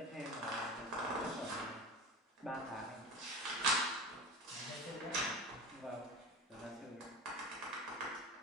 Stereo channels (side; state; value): both; normal; correlation 0.31